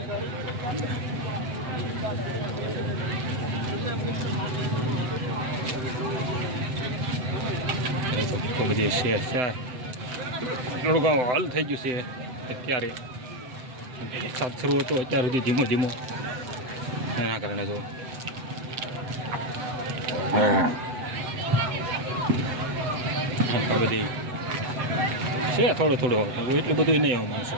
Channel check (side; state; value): left; late; 8.0 ms